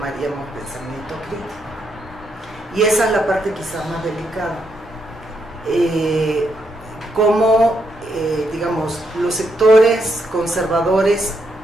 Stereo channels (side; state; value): both; normal; correlation 0.78